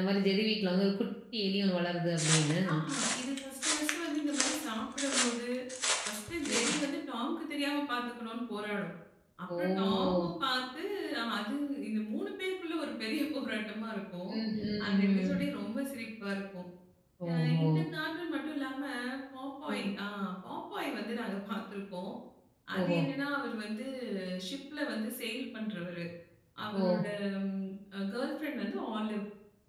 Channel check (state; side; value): identical; both; correlation 1.00